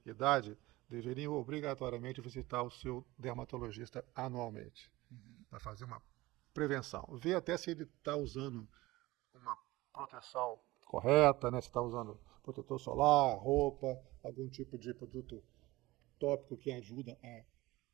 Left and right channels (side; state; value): left; quieter; 19.5 dB